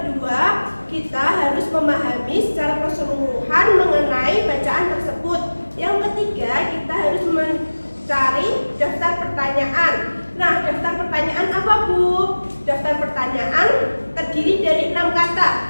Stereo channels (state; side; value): inverted; both; correlation -1.00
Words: kita harus memahami secara keseluruhan mengenai bacaan tersebut. Yang ketiga kita harus mencari daftar pertanyaan. Nah, daftar pertanyaan apa, Bu? Daftar pertanyaan terdiri dari 6